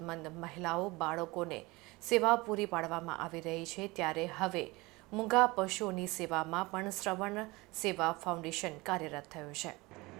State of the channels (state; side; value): quieter; left; 22.9 dB